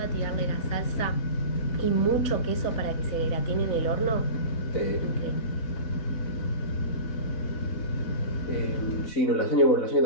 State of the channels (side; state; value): right; late; 4.1 ms